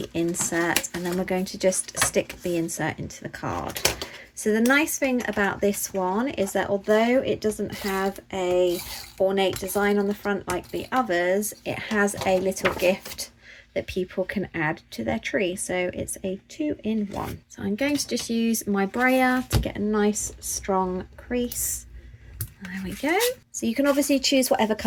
insert. And then we're going to just stick the insert into the card. So the nice thing about this one is that although it doesn't have a ornate design on the front like the others, it has a little gift that people can add to their tree. So it's a 2-in-1. So I'm going to just use my brayer to get a nice strong crease. There we go. So you can obviously choose whatever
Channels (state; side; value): identical; both; correlation 1.00